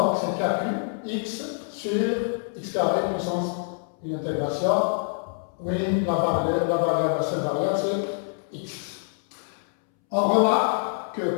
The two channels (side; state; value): right; silent; 61 dB below the other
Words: c'est KQ X sur X carré puissance une intégration. Oui, la variable, la seule variable, c'est X. On remarque